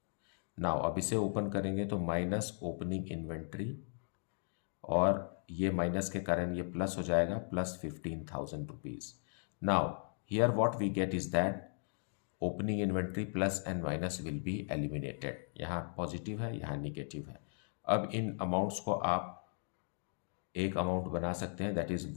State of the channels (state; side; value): silent; right; 53 dB below the other